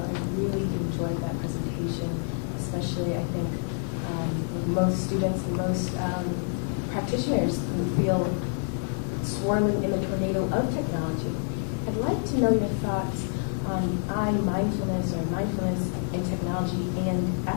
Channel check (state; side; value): silent; right; 58 dB below the other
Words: really enjoyed that presentation, especially I think most students and most practitioners who feel swirling in the tornado of technology. I'd like to know your thoughts on mindfulness or mindfulness in technology and